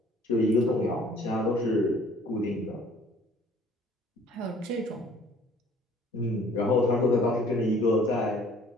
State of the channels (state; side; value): normal; both; correlation 0.56